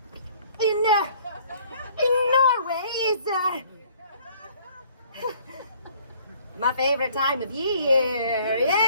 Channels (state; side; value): inverted; both; correlation -0.57